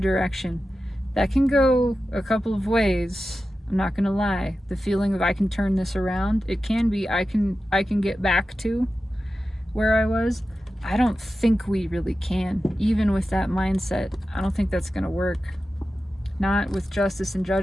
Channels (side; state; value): both; normal; correlation 0.93